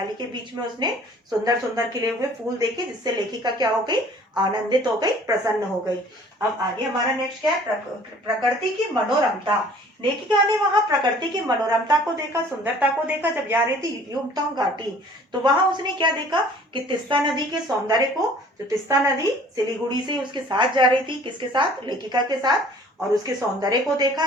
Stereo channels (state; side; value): normal; both; correlation 0.52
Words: के बीच में उसने सुंदर सुंदर खिले हुए फूल देखे, जिससे लेखिका क्या हो गई, आनंदित हो गई, प्रसन्न हो गई। अब आगे हमारा नेक्स्ट क्या है, प्रकृति की मनोरमता। लेखिका ने वहां प्रकृति की मनोरमता को देखा, सुंदरता को देखा, जब जा रही थी युमथांग घाटी, तो वहां उसने क्या देखा कि तीस्ता नदी के सौंदर्य को, जो तीस्ता नदी सिलीगुड़ी से उसके साथ जा रही थी, किसके साथ, लेखिका के साथ, और उसके सौंदर्य को देखा,